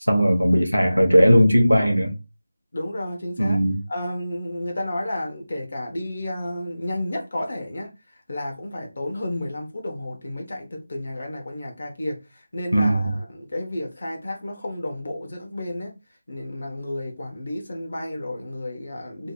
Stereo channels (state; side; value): inverted; both; correlation -0.95